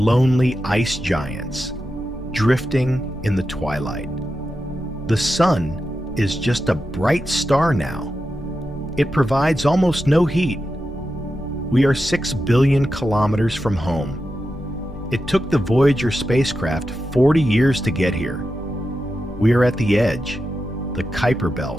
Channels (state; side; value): normal; both; correlation 0.89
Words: ice giants, drifting in the twilight. The sun is just a bright star now. It provides almost no heat. We are 6 billion kilometers from home. It took the Voyager spacecraft 40 years to get here. We are at the edge, the Kuiper